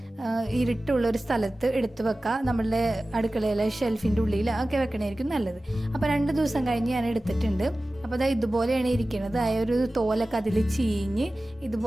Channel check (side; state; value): both; normal; correlation 0.96